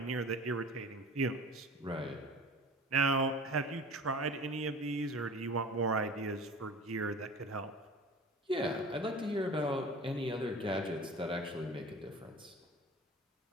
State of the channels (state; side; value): normal; both; correlation 0.39